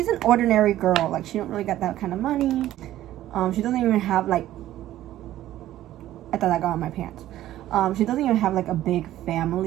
an ordinary girl. She don't really got that kind of money. She doesn't even have I thought I got on my pants. She doesn't even have a big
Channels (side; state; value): left; quieter; 13.7 dB